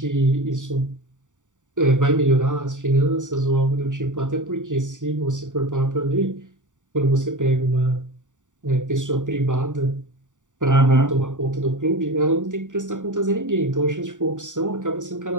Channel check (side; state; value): left; late; 0.86 ms